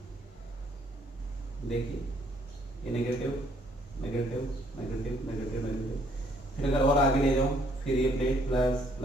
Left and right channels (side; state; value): both; normal; correlation 0.65